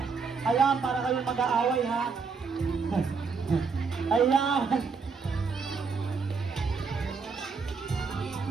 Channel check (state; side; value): quieter; left; 5.1 dB